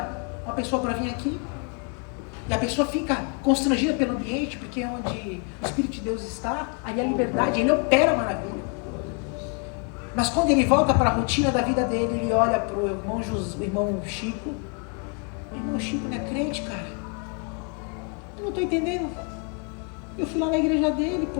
uma pessoa para vir aqui e a pessoa fica constrangida pelo ambiente, porque onde o Espírito de Deus está, aí a liberdade, ele opera maravilha. Mas quando ele volta para a rotina da vida dele, ele olha para o irmão Chico. O irmão Chico não é crente, cara. Eu não estou entendendo. Eu fui lá na igreja dele,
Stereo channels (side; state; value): right; quieter; 35.4 dB